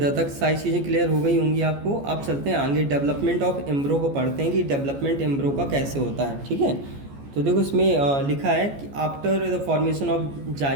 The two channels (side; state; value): left; late; 14 ms